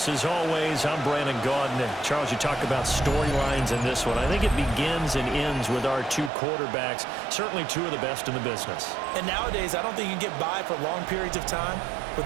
as always, I'm Brandon Gaudin. And Charles, you talk about storylines in this one. I think it begins and ends with our two quarterbacks, certainly two of the best in the business. And nowadays, I don't think you can get by for long periods of time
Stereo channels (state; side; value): drops out; left; at 6.3 s